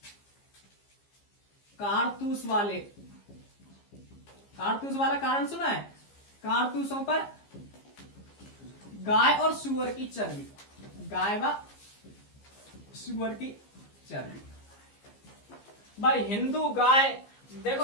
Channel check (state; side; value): late; right; 15 ms